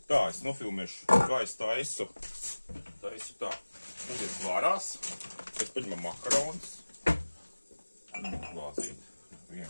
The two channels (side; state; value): both; inverted; correlation -1.00